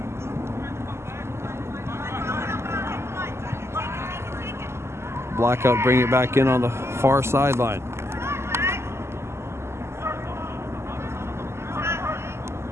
Blackout bring it back in on the far sideline.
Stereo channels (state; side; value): late; left; 0.13 ms